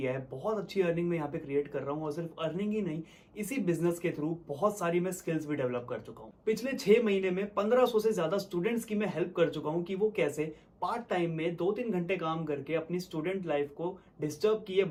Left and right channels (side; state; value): both; identical; correlation 1.00